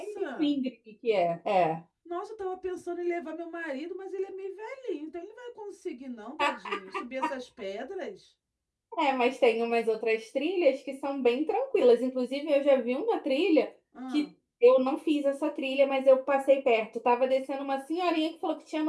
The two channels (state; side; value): identical; both; correlation 1.00